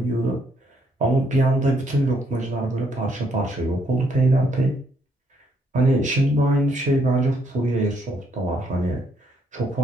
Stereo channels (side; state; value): both; normal; correlation 0.71